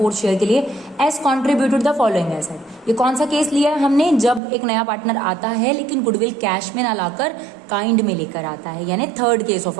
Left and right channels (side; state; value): left; drops out; at 4.4 s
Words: शेयर के लिए, S contributed the following asset. ये कौन सा केस लिया है हमने, जब एक नया पार्टनर आता है लेकिन गुडविल कैश में ना लाकर काइंड में लेकर आता है, यानी third case of